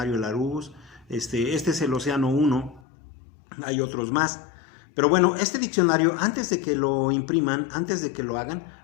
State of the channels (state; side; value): drops out; right; at 2.8 s